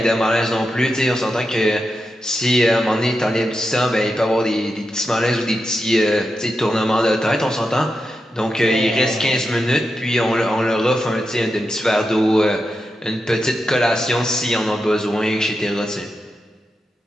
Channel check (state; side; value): normal; both; correlation 0.88